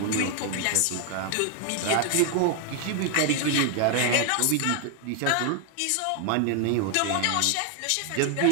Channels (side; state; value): both; different; correlation 0.00